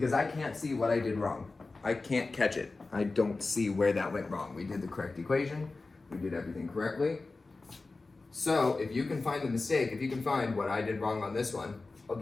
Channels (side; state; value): right; quieter; 3.6 dB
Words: I can't see what I did wrong. I can't catch it. I don't see where that went wrong. We did the correct equation. We did everything correctly. So if you can find the mistake, if you can find what I did wrong on this one, I'll